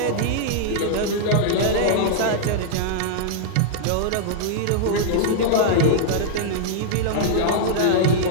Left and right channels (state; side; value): different; both; correlation -0.01